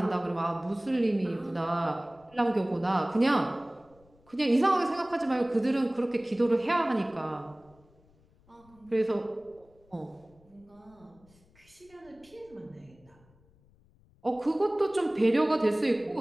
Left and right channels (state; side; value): noise; left; rumble, 30 dB below the sound